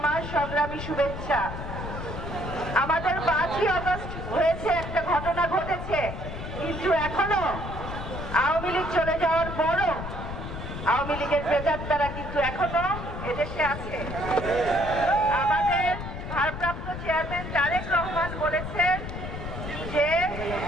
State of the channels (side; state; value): left; noise; rumble, 7 dB below the sound